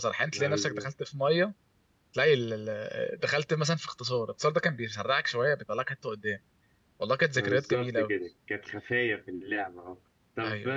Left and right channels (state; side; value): identical; both; correlation 1.00